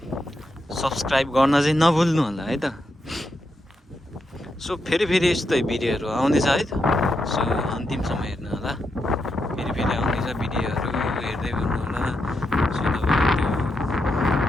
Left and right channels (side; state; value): both; normal; correlation 0.84